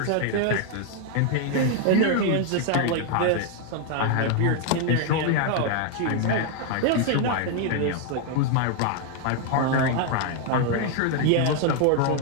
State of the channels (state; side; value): different; both; correlation 0.00